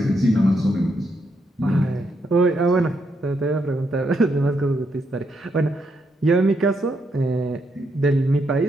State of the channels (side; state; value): both; normal; correlation 0.79